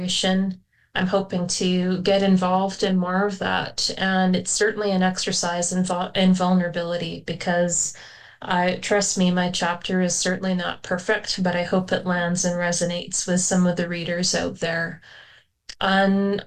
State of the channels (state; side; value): identical; both; correlation 1.00